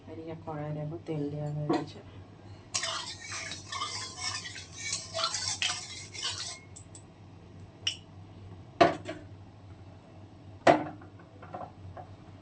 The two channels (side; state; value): both; identical; correlation 1.00